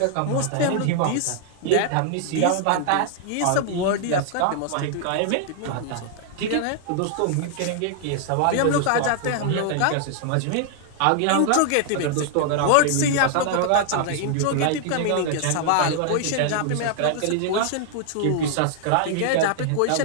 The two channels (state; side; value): different; both; correlation 0.00